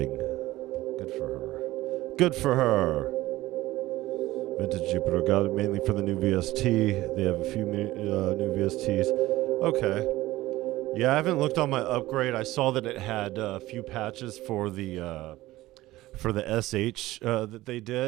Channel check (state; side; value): quieter; left; 17.3 dB